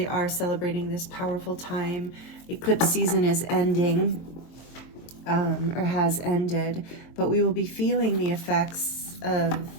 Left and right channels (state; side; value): late; right; 23 ms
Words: are celebrating this powerful time. Eclipse season is ending, or has ended, but we will be feeling the effects of